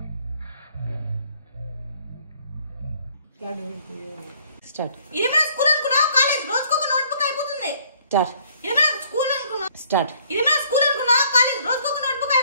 స్టార్ట్ ఇదేమైనా స్కూల్ అనుకున్నా కాలేజ్ రోజుకొక నోట్బుక్ అయిపోతుంది స్టార్ట్ ఇదేమైనా స్కూల్ అనుకున్నా స్టార్ట్ ఇదేమైనా స్కూల్ అనుకున్నా కాలేజ్ రోజుకొక నోట్బుక్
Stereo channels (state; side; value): inverted; both; correlation -0.61